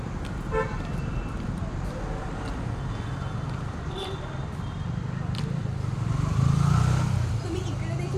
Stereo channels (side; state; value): both; identical; correlation 1.00